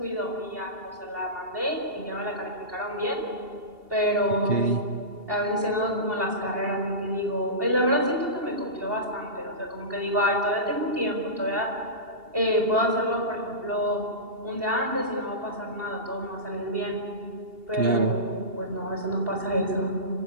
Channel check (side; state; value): left; late; 2.8 ms